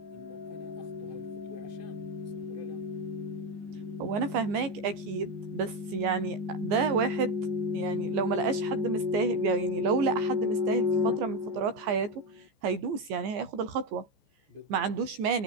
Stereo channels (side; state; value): left; late; 14 ms